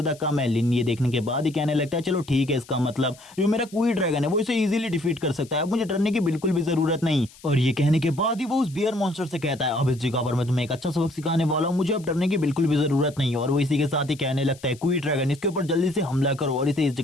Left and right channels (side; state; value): left; noise; hiss, 23 dB below the sound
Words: कम है। लिन ये देखने के बाद ही कहने लगता है चलो ठीक है, इसका मतलब जो मेरा क्वी ड्रैगन है वो इसे इजीली डिफीट कर सकता है, अब मुझे डरने की बिल्कुल भी जरूरत नहीं। और ये कहने के बाद ही वो उस बियर मॉन्स्टर से कहता है अब इस जगह पर मैं तुम्हें एक अच्छा सबक सिखाने वाला हूं, मुझे अब डरने की बिल्कुल भी जरूरत नहीं। और वो इसी के साथ ही कहने लगता है क्वी ड्रैगन इसके ऊपर जल्दी से हमला करो और इसे इस